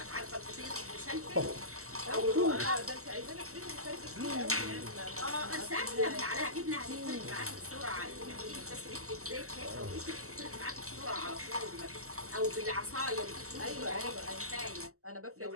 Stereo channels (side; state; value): left; late; 0.64 ms